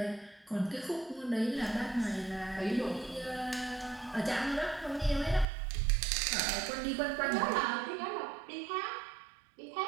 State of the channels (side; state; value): left; drops out; at 5.5 s